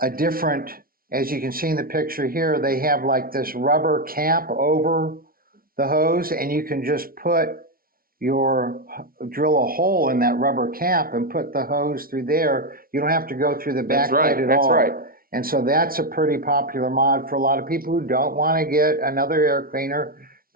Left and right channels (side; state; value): left; late; 0.43 ms